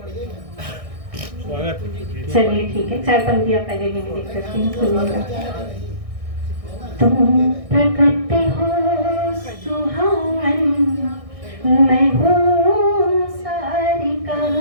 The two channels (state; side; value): late; left; 1.6 ms